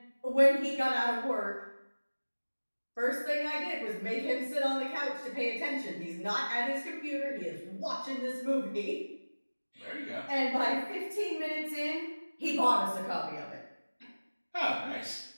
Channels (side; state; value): both; inverted; correlation -1.00